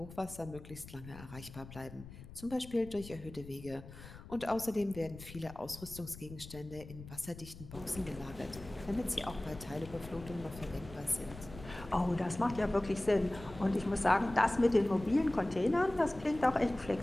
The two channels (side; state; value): left; noise; rumble, 15 dB below the sound